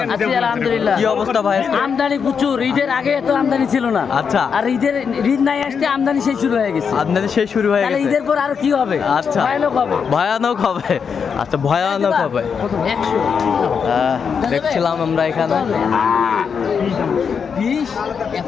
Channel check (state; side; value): quieter; right; 6.4 dB